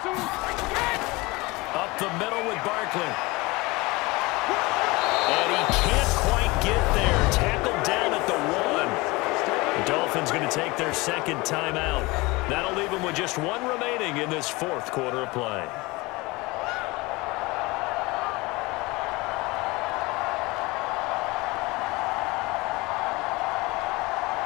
Up the middle with Barkley. And he can't quite get there. Tackled down at the 1. The Dolphins going to take their second timeout. That'll leave them with just one remaining in this fourth quarter of play.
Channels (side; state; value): right; quieter; 23.2 dB